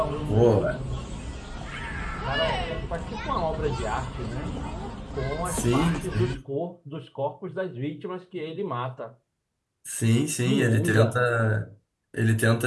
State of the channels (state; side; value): identical; both; correlation 1.00